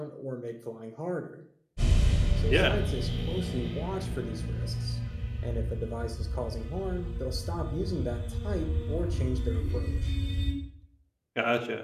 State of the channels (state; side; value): identical; both; correlation 1.00